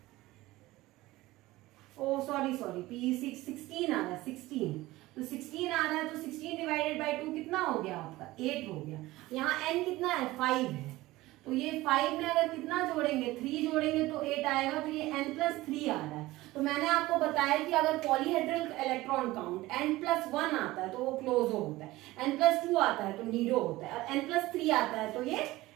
ओ सॉरी PEC 16 आ रहा है, 16। तो 16 आ रहा है, तो 16 डिवाइडेड बाई 2 कितना हो गया आपका, 8 हो गया। यहाँ n कितना है 5 है, तो ये 5 में अगर कितना जोड़ेंगे, 3 जोड़ेंगे तो 8 आएगा, तो ये n+3 आ रहा है। तो मैंने आपको बताया कि अगर पॉलीहेड्रल इलेक्ट्रॉन काउंट n+1 आता है तो वो क्लोजो होता है, n+2 आता है तो नीडो होता है, और n+3 आता है तो ये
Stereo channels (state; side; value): quieter; left; 18.4 dB